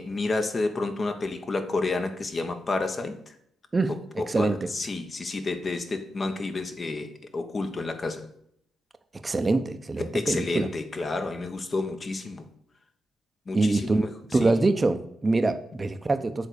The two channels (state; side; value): normal; both; correlation 0.90